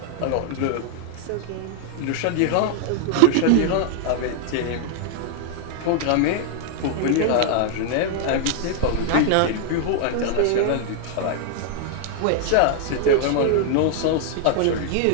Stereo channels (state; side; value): different; both; correlation 0.00